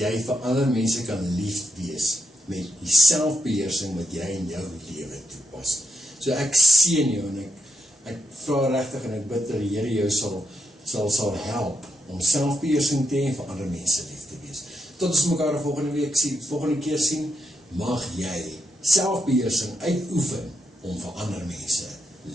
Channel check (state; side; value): normal; both; correlation 0.81